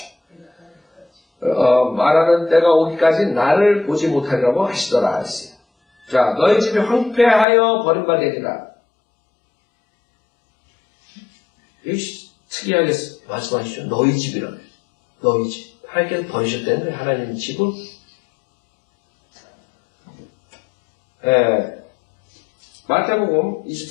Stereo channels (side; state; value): right; drops out; at 7.5 s